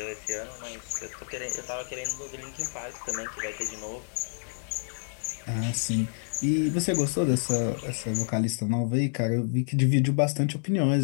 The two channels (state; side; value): silent; right; 59 dB below the other